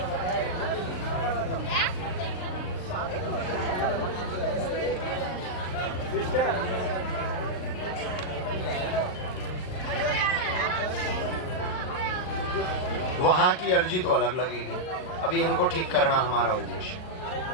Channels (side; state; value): right; late; 38 ms